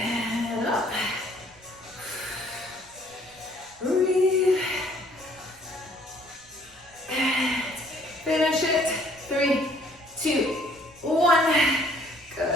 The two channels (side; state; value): right; noise; rumble, 27 dB below the sound